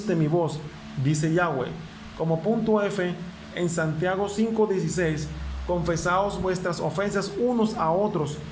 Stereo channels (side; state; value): both; identical; correlation 1.00